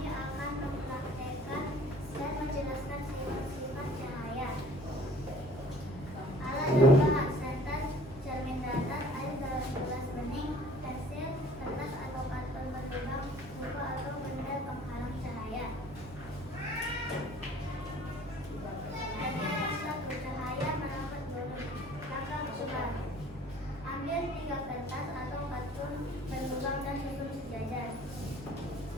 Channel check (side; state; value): both; normal; correlation 0.51